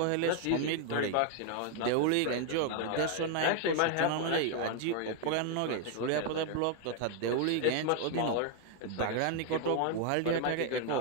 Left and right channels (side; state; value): both; different; correlation 0.00